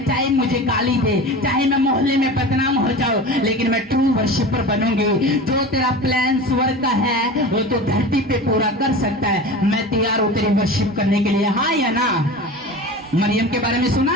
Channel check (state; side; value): normal; both; correlation 0.32